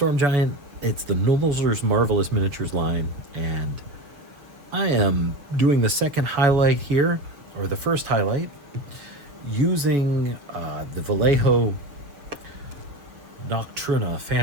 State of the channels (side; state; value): left; late; 6.5 ms